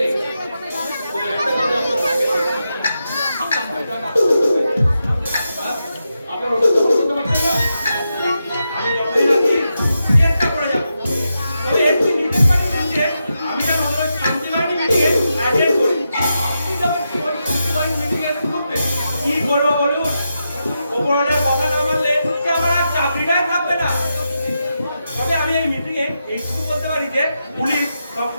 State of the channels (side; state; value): both; inverted; correlation -0.87